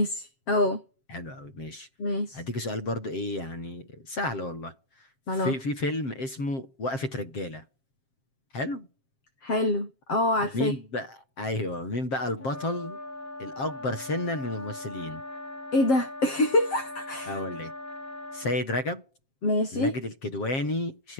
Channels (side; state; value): right; late; 7.5 ms